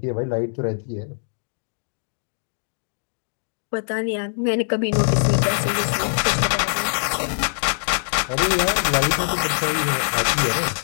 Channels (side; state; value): right; silent; digital silence